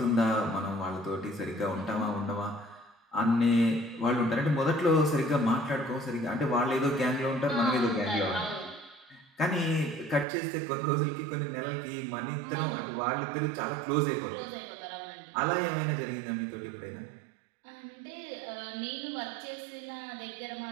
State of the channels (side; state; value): left; drops out; at 10.2 s